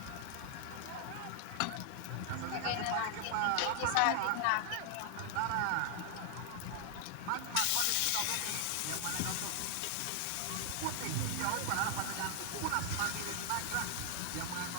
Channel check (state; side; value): different; both; correlation 0.00